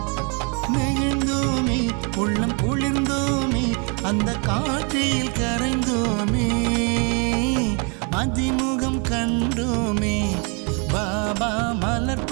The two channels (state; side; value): quieter; left; 35.0 dB